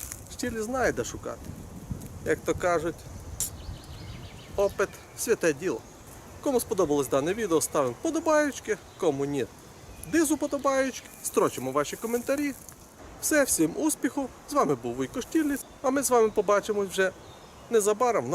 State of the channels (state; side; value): identical; both; correlation 1.00